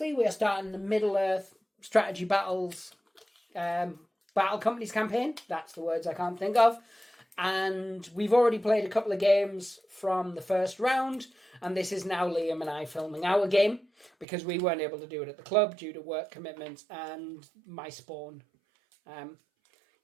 we are starting the Middle-earth Strategy Battles Battle Companies campaign. That's the words I can't think of. And we've already played a couple of games from the first round, and this is now Liam and I filming our game because we weren't able to do it at the club due to work commitments and my spawn.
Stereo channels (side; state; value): left; drops out; at 14.2 s